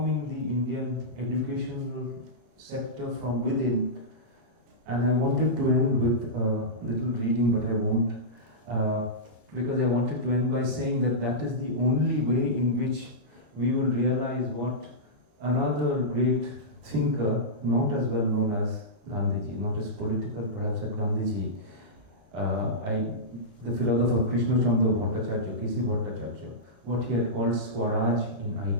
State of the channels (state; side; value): late; left; 34 ms